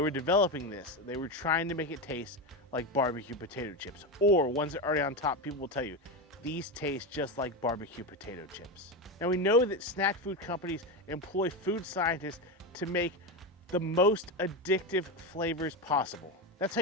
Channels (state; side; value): normal; both; correlation 0.16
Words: developing this, they were trying to make it taste like barbecue potato chips, or ones that are already on top, people will tell you these taste just like barbecue potato chips. Now we know that snack food companies employ food scientists to make the most addictive flavors possible. That's how